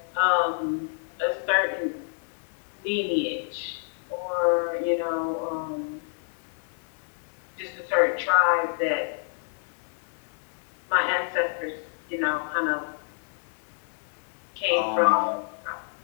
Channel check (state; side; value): silent; right; digital silence